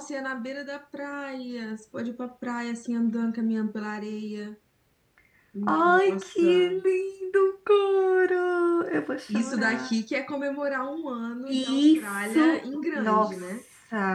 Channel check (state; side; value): identical; both; correlation 1.00